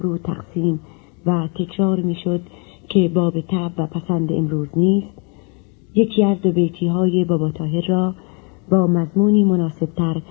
تقسیم و تکرار میشد که باب طبع و پسند امروز نیست، یکی از دو بیتی های بابا طاهر را با مضمونی مناسبتر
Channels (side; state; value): right; quieter; 34.8 dB